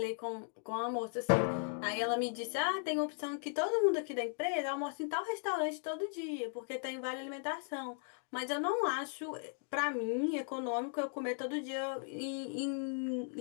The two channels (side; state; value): right; silent; 53 dB below the other